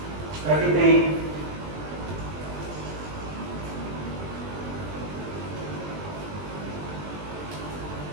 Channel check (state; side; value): late; left; 20 ms